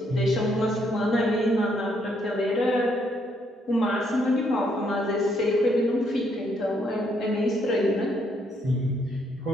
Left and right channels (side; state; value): both; normal; correlation 0.72